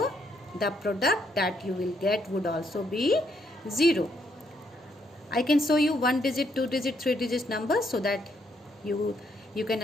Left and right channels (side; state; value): both; normal; correlation 0.73